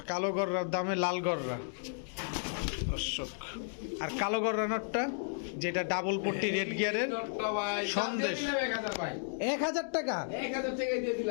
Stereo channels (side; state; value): right; silent; digital silence